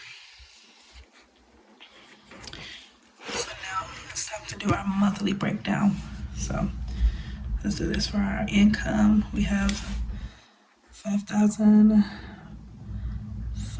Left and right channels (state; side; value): identical; both; correlation 1.00